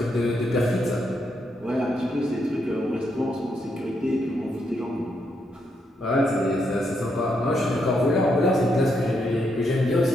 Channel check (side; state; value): both; normal; correlation 0.79